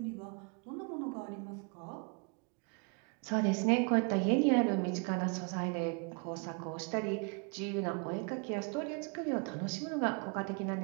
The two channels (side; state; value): left; quieter; 35.5 dB